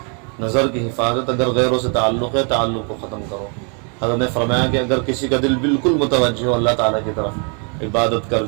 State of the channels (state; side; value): quieter; left; 37.8 dB